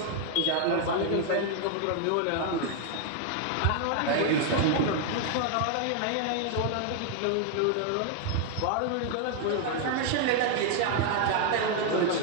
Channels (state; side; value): different; both; correlation 0.00